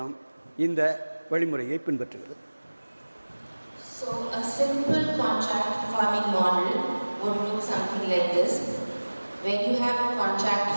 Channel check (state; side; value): inverted; both; correlation -1.00